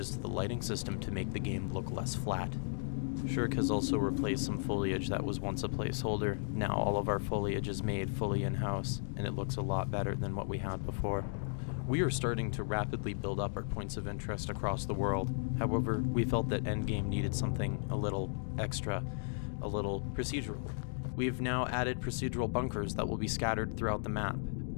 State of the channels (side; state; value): right; silent; digital silence